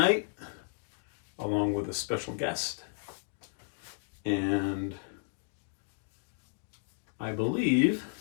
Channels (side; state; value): right; silent; digital silence